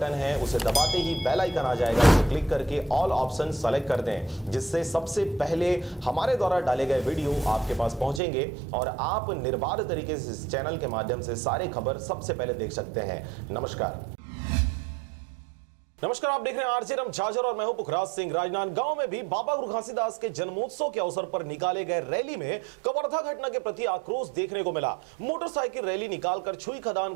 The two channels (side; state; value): left; drops out; at 8.2 s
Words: है, उसे दबाते ही बेल आइकन आ जाएगा, उसे क्लिक करके ऑल ऑप्शन सेलेक्ट कर दें, जिससे सबसे पहले हमारे द्वारा डाले गए वीडियो आपके पास पहुंचेंगे और आप निर्बाध तरीके से इस चैनल के माध्यम से सारे खबर सबसे पहले देख सकते हैं। नमस्कार, आप देख रहे हैं आरजे रमझाझर और मैं हूं पुखराज सिंह। राजनांदगांव में भी बाबा गुरु घासीदास के जन्मोत्सव के अवसर पर निकाले गए रैली में कवर्धा घटना के प्रति आक्रोश देखने को मिला। मोटरसाइकिल रैली निकालकर छुई खदान